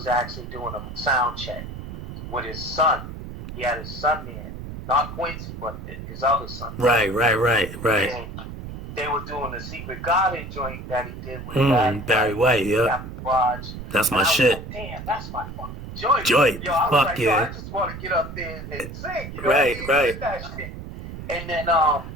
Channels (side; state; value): right; noise; rumble, 10 dB below the sound